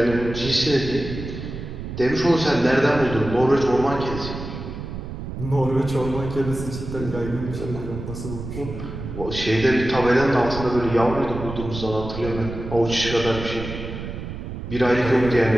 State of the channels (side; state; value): right; noise; rumble, 8 dB below the sound